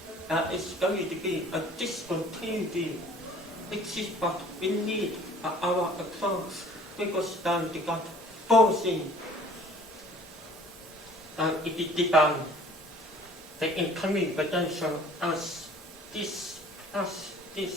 that is going to be a discontinuity, which is what we need for our approach, because then we got forcing. If we define the incoming potential as this,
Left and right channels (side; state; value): both; normal; correlation 0.51